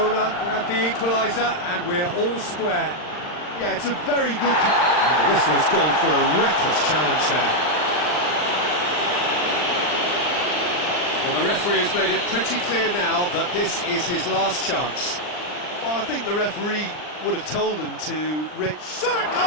grabbed the equaliser, and we're all square. Yeah, it's a very good... And the whistle has gone for a reckless challenge there. Well, the referee has made it pretty clear now that this is his last chance. Well, I think the referee would have told him to... Shot at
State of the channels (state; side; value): late; right; 39 ms